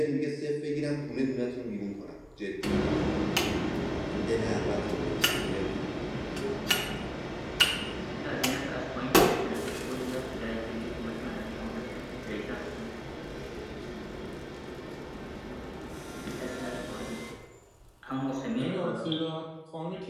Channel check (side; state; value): both; identical; correlation 1.00